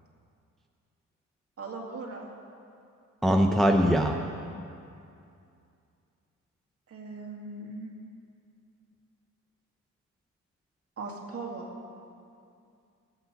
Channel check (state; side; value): normal; both; correlation 0.81